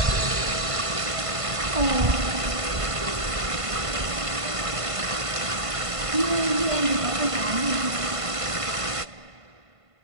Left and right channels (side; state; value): left; late; 1.5 ms